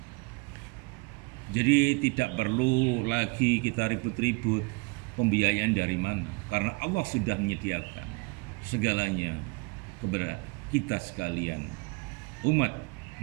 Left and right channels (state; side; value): quieter; left; 28.7 dB